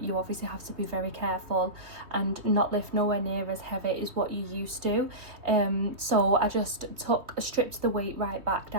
You obviously have to be very careful and not lift nowhere near as heavy as what you used to. So I just stripped the weight right back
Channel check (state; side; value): late; left; 3.2 ms